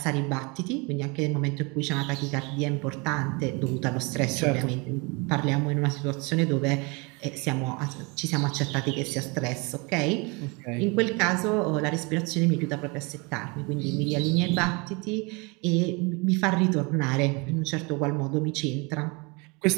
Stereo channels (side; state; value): left; quieter; 29.1 dB